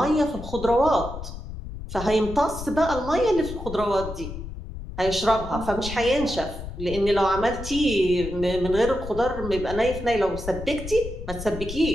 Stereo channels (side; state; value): left; noise; rumble, 9 dB below the sound